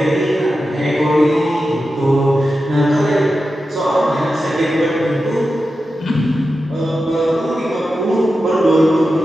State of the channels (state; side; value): normal; both; correlation 0.91